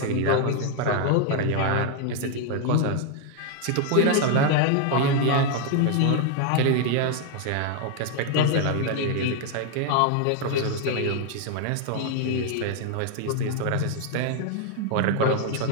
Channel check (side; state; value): both; different; correlation 0.00